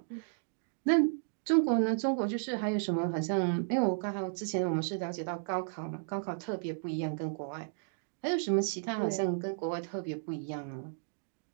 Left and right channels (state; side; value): silent; left; digital silence